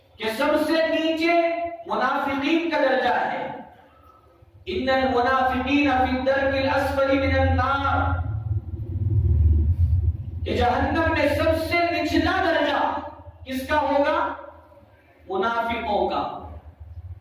کہ سب سے نیچے منافقین کا درجہ ہے. ان المنافقین فی الدرک الاسفل من النار، کہ جہنم میں سب سے نچلا درجہ کس کا ہوگا؟ منافقوں کا.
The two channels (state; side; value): identical; both; correlation 1.00